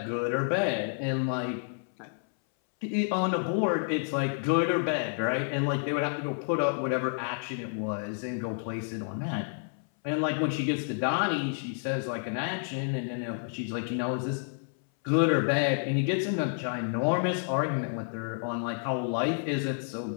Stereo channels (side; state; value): right; silent; 58 dB below the other